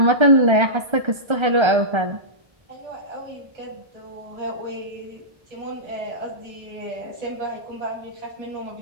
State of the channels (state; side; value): late; left; 1.3 ms